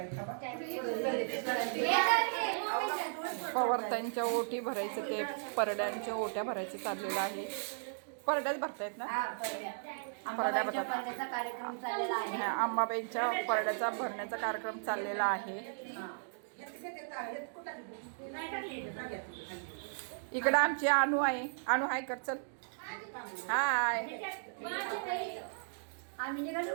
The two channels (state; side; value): silent; left; digital silence